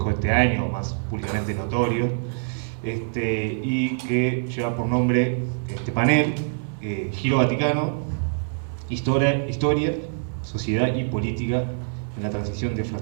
este año, más públicamente notorio, y que lleva por nombre este panel, Giro Vaticano, Historia, Sociedad y Política en la transición de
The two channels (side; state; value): left; silent; digital silence